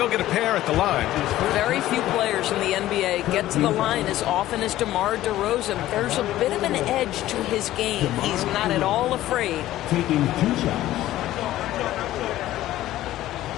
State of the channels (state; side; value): quieter; right; 14.6 dB